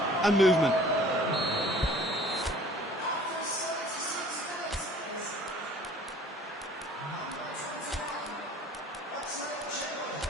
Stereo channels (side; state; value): both; normal; correlation 0.51